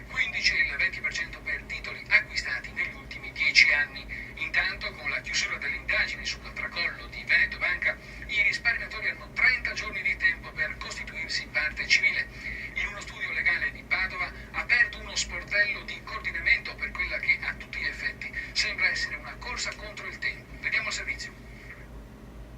15 e il 20% per titoli acquistati negli ultimi 10 anni. Intanto, con la chiusura delle indagini sul tracollo di Veneto Banca, i risparmiatori hanno 30 giorni di tempo per costituirsi parte civile. In uno studio legale di Padova ha aperto uno sportello di coordinamento per quella che a tutti gli effetti sembra essere una corsa contro il tempo. Vediamo il servizio.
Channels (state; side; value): identical; both; correlation 1.00